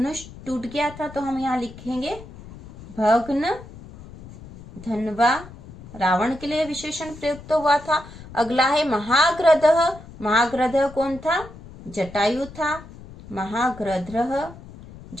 टूट गया था, तो हम यहाँ लिखेंगे भग्न धनवा, रावण के लिए विशेषण प्रयुक्त हुआ था। अगला है महाग्रधः। महाग्रधः कौन था? जटायु था। महाग्रधः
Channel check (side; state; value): left; noise; rumble, 17 dB below the sound